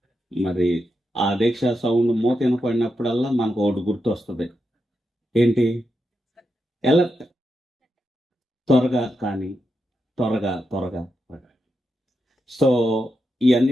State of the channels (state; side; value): normal; both; correlation 0.86